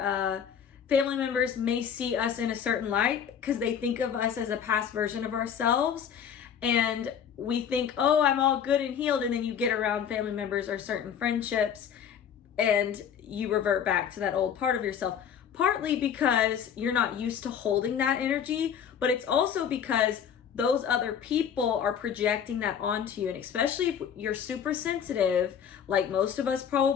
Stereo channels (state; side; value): quieter; right; 8.2 dB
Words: family members may see us in a certain light because they think of us as a past version of ourselves. And we think, oh, I'm all good and healed. And then you get around family members or certain friendships and you revert back to that old part of yourself. Partly because you're not used to holding that energy, but it's also because those other people are projecting that onto you. And especially if you're super sensitive, like most of us